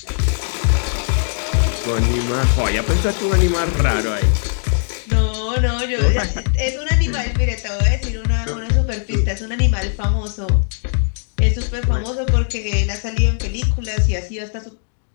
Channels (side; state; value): right; silent; digital silence